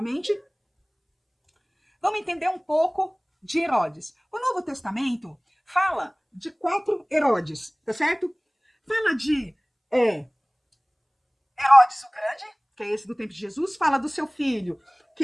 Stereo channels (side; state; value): both; identical; correlation 1.00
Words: Vamos entender um pouco de Herodes. O Novo Testamento fala de 4 Herodes, tá certo? Fala de Herodes o Grande, que é esse do tempo de Jesus. Fala do seu filho,